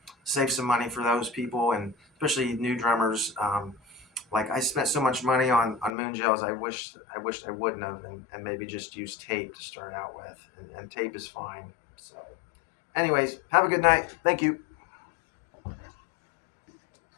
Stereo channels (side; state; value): right; drops out; at 5.9 s